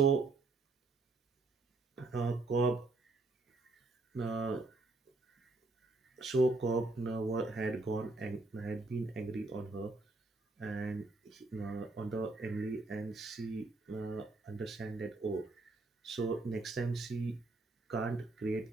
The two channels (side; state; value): left; quieter; 3.3 dB